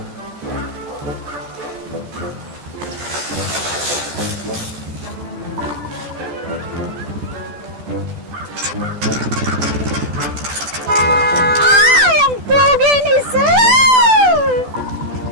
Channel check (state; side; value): late; left; 14 ms